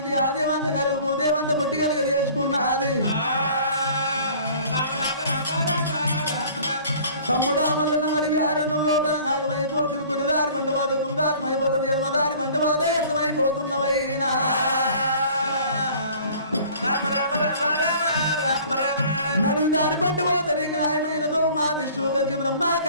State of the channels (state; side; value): inverted; both; correlation -0.49